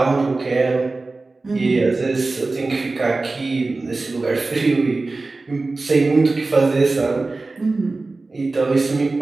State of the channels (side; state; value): left; quieter; 3.5 dB